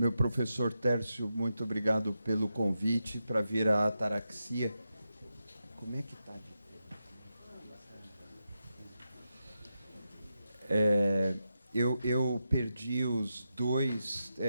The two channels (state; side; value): inverted; both; correlation -0.88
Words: professor Tércio, muito obrigado pelo convite para vir à Ataraxia. Como é que está? Eu perdi os